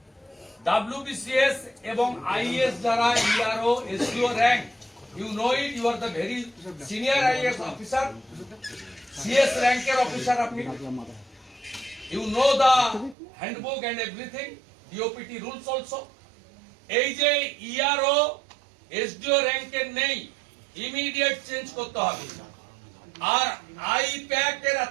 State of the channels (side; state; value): left; drops out; at 13.2 s